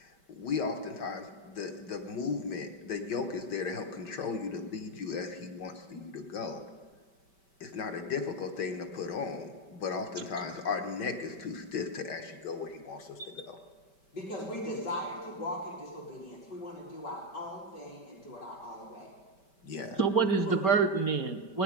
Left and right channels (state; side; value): late; right; 5.2 ms